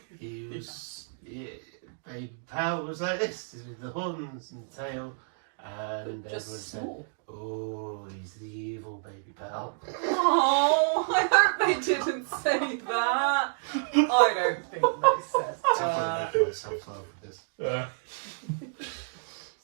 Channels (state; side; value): silent; left; digital silence